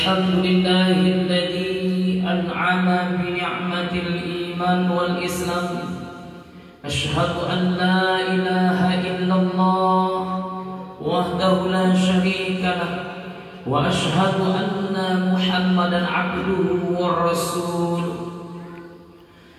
an'ama bi ni'matil iman wal islam. Asyhadu an la ilaha illallah wahdahu la syarika lah wa asyhadu anna Muhammadan abduhu wa rasuluh.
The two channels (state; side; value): identical; both; correlation 1.00